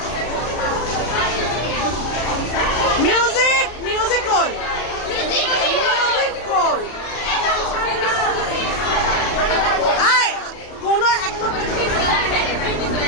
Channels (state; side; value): late; right; 33 ms